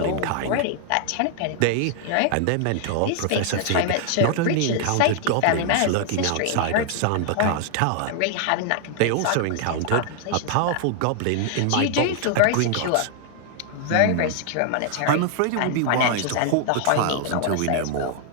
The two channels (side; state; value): both; different; correlation 0.00